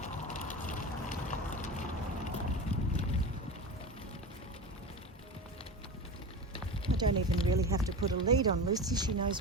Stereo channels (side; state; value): both; normal; correlation 0.27